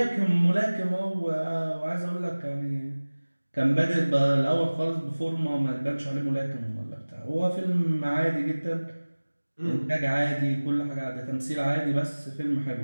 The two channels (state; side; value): inverted; both; correlation -1.00